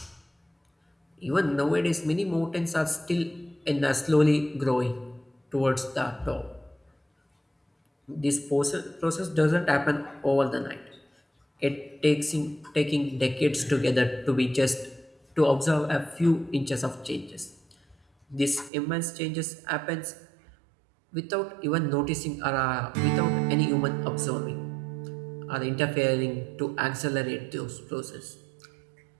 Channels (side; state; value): left; drops out; at 18.7 s